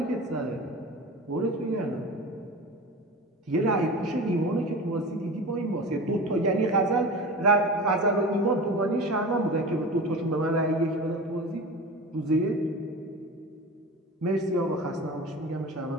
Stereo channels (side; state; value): both; normal; correlation 0.32